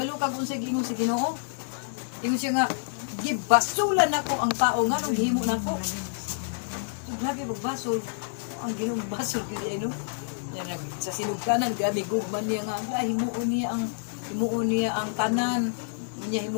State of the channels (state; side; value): silent; right; 59 dB below the other